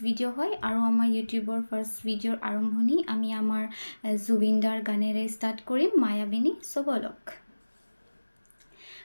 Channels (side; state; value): both; inverted; correlation -1.00